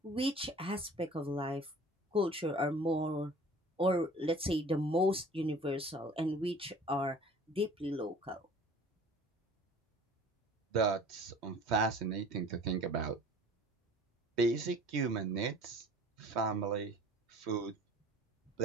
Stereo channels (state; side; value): normal; both; correlation 0.47